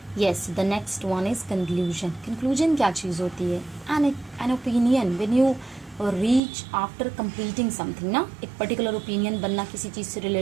yes, the next one is conclusion. Conclusion क्या चीज़ होती है? An opinion when you reach after completing something, ना. एक particular opinion बनना किसी चीज़ से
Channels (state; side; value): drops out; left; at 6.4 s